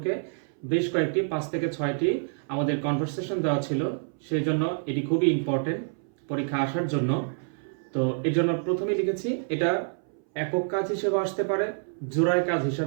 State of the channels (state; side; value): silent; left; 60 dB below the other